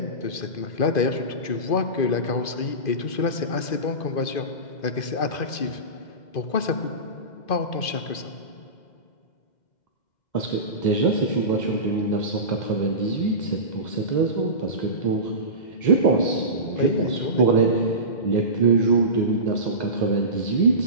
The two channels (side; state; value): right; late; 2.5 ms